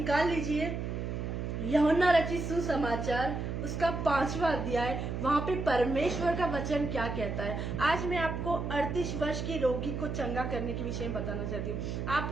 लीजिए यूहन्ना रचित सुसमाचार उसका 5वां अध्याय। वहां पे परमेश्वर का वचन क्या कहता है। आज मैं आपको 38 वर्ष के रोगी को चंगा करने के विषय में बताना चाहती हूँ।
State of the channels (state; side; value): noise; right; hum, 3 dB below the sound